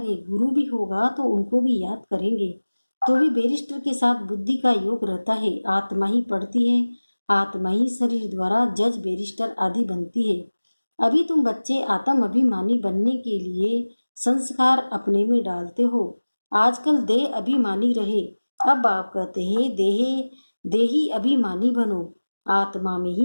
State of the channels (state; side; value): inverted; both; correlation -1.00